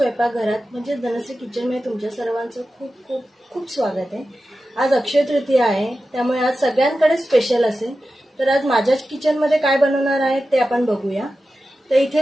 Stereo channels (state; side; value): normal; both; correlation 0.93